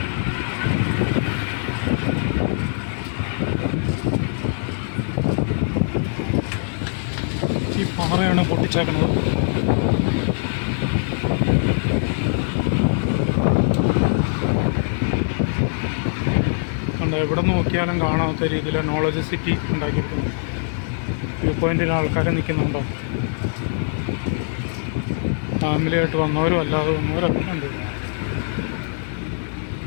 ഈ പാറയാണ് പൊട്ടിച്ചേക്കുന്നത്. എവിടെ നോക്കിയാലും കാണാത്ത രീതിയിൽ നോളജ് സിറ്റി ഉണ്ടാക്കിയിട്ടുണ്ട്. വ്യൂ പോയിൻറ്റിൽ ആൾക്കാർ നിൽക്കുന്നുണ്ടോ? ഫാമിലിയായിട്ട് വന്നവരും അല്ലാതെ വന്നവരൊക്കെ ഉണ്ട്.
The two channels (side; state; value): right; silent; digital silence